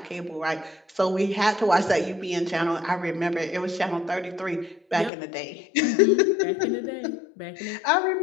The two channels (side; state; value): right; drops out; at 5.1 s